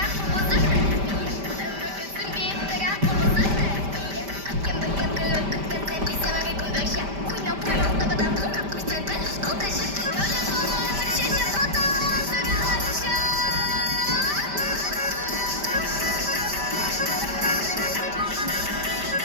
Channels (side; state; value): left; late; 5.1 ms